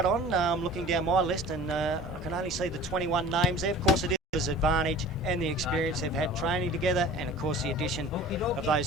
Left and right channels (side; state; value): both; normal; correlation 0.42